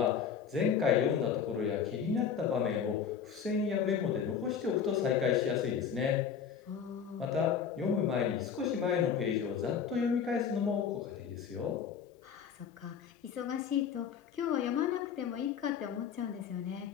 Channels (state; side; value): quieter; right; 7.3 dB